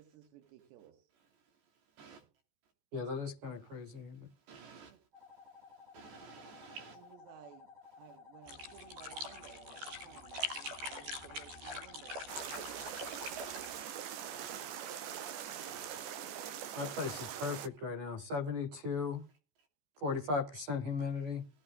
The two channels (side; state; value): left; late; 14 ms